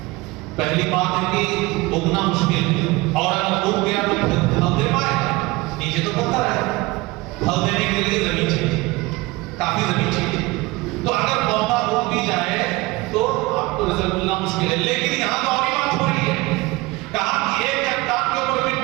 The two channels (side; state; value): left; quieter; 22.2 dB